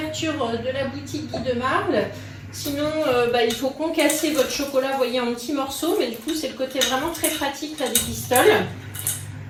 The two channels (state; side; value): identical; both; correlation 1.00